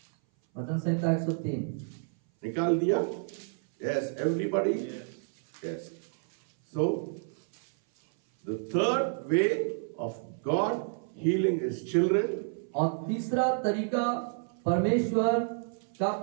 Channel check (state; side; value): silent; left; 58 dB below the other